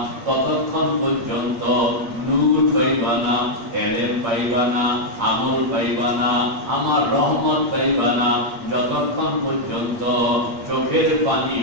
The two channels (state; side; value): late; left; 8.6 ms